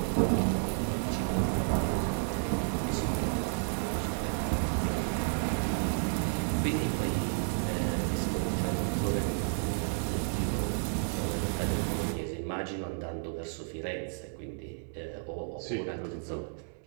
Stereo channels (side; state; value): left; silent; 57 dB below the other